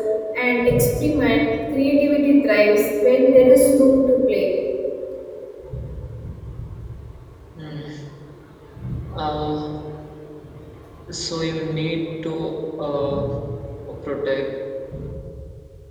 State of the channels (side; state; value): both; identical; correlation 1.00